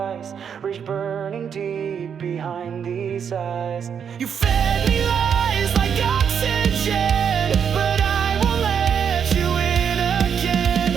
reach burning deep behind these eyes. You fed me lies like oxygen, but I won't let you in again.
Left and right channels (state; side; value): quieter; left; 7.5 dB